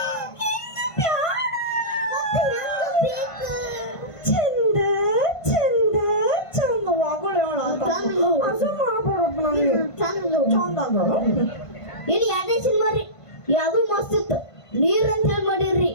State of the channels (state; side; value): late; right; 1.5 ms